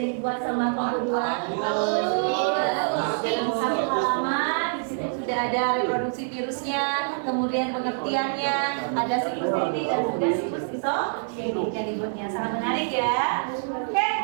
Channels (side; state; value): left; silent; digital silence